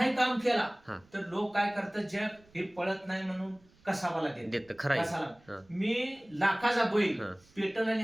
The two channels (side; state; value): right; noise; rumble, 30 dB below the sound